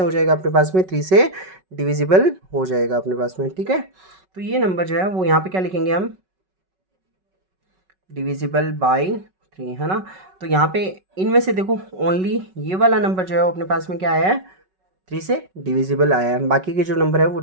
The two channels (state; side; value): late; left; 5.3 ms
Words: हो जाएगा अपने पास में, 3 से डिविजिबल हो जाएगा अपने पास में, ठीक है। तो ये नंबर जो है वो यहाँ पे क्या लिखेंगे हम, डिविजिबल बाई 3, है ना। तो यहाँ पे इनमें से देखो ओनली ये वाला नंबर जो है वो अपने पास में क्या आया है, 3 से डिविजिबल आया है, बाकी के जो नंबर है वो